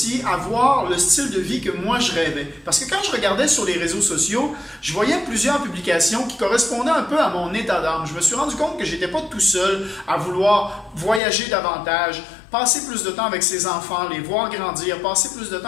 avoir le style de vie que moi je rêvais. Parce que quand je regardais sur les réseaux sociaux, je voyais plusieurs publications qui correspondaient un peu à mon état d'âme. Je me suis rendu compte que je n'étais pas tout seul à vouloir voyager davantage, passer plus de temps avec ses enfants, les voir grandir, passer plus de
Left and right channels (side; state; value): right; drops out; at 11.2 s